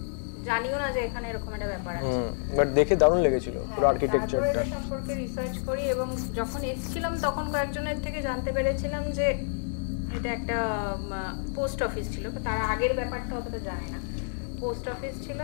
জানিও না যে এখানে এরকম একটা ব্যাপার আছে বাট দেখে দারুণ লেগেছিল পুরো আর্কিটেকচারটা সম্পর্কে রিসার্চ করি এবং যখন এসেছিলাম তখন কয়েকজনের থেকে জানতে পেরেছিলাম যে এটা একটা পোস্ট অফিস ছিল তার আগের ব্যাপারটা অতটা জানে না পোস্ট অফিস ছিল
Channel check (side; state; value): right; silent; digital silence